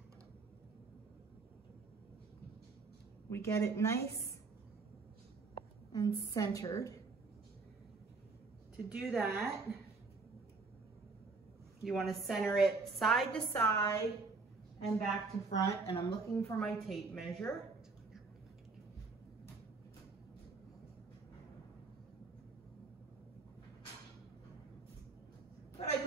we get it nice and centered. To do that, you want to center it side to side and back to front, and I'm looking for my tape measure. But I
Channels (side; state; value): left; quieter; 4.1 dB